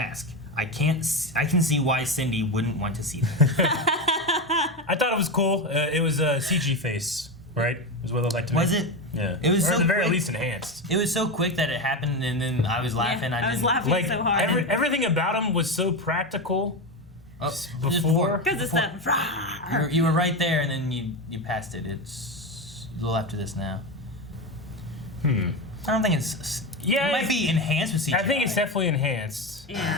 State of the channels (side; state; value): both; normal; correlation 0.16